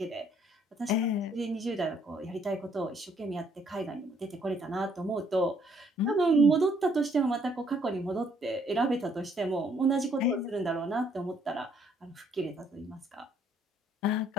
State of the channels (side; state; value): both; normal; correlation 0.66